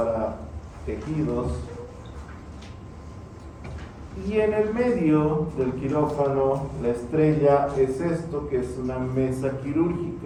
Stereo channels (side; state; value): both; identical; correlation 1.00